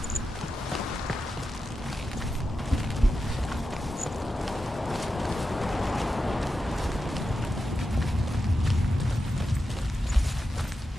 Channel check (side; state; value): both; normal; correlation 0.90